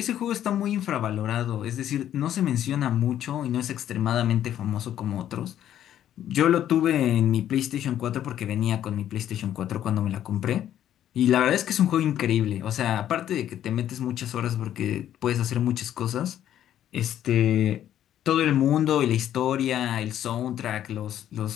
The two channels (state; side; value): quieter; right; 11.2 dB